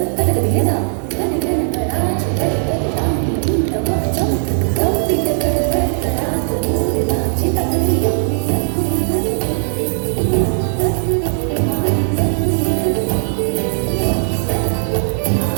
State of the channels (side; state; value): left; silent; 65 dB below the other